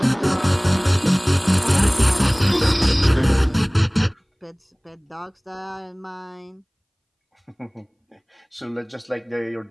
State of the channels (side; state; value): both; identical; correlation 1.00